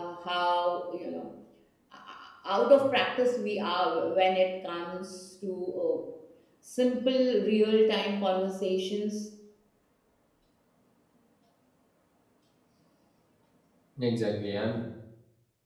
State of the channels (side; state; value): both; identical; correlation 1.00